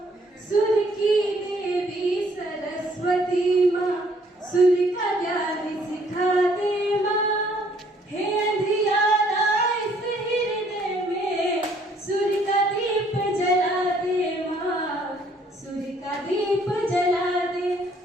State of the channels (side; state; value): both; normal; correlation 0.63